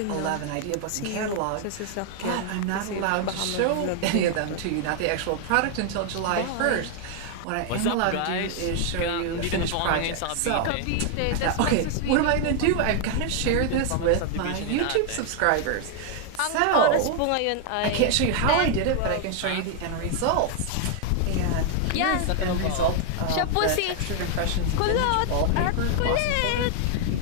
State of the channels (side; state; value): both; different; correlation 0.00